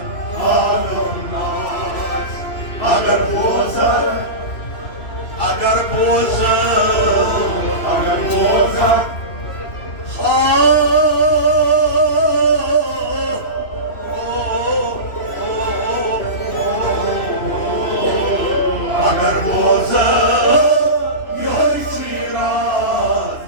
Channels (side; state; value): right; late; 3.0 ms